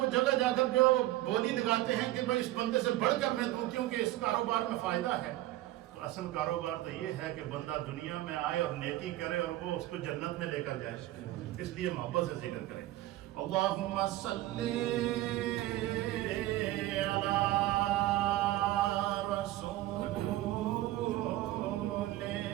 جگہ جا کر جو ہے وہ بولی لگاتے ہیں کہ بھائی اس بندے سے بڑھ کر میں دوں کیونکہ اس کاروبار میں فائدہ ہے. تو اصل کاروبار تو یہ ہے کہ بندہ دنیا میں آئے اور نیکی کرے اور وہ اس کو جنت میں لے کر جائے. اس لیے محبت سے ذکر کریں. اللہم صلی علی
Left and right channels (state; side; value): quieter; left; 15.9 dB